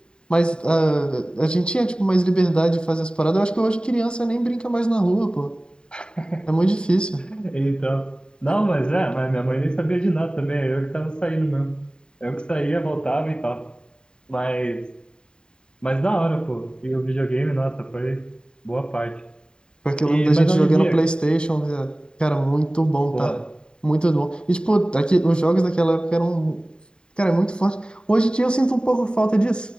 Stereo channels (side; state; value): right; late; 0.049 ms